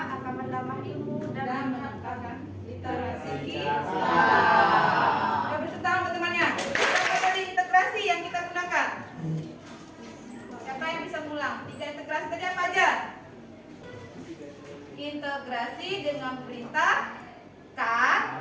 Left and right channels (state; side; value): identical; both; correlation 1.00